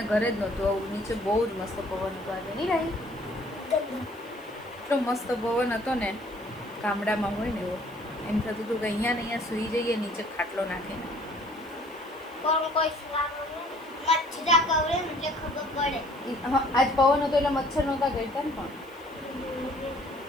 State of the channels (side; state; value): left; noise; hiss, 28 dB below the sound